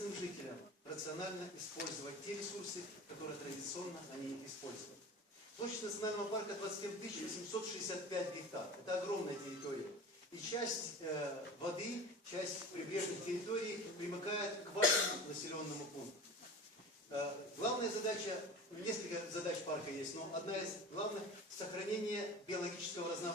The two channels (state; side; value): normal; both; correlation 0.35